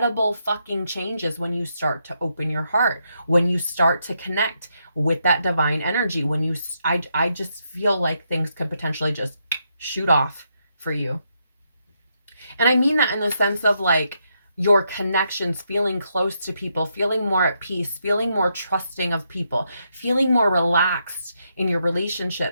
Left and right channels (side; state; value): both; inverted; correlation -0.79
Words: fucking changes when you start to open your heart, when you start to connect with that divine energy, I just feel like things could potentially just shoot off for you. And I mean that in the sense of like your connections, feeling close to people, feeling more at peace, feeling more trusting of people, feeling more relaxed in your